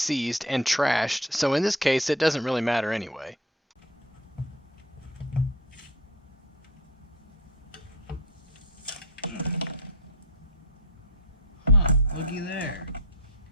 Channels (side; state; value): both; normal; correlation 0.29